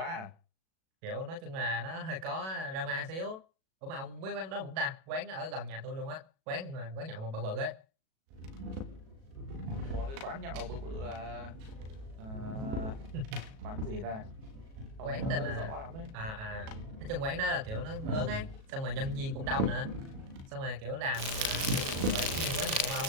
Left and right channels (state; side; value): late; left; 37 ms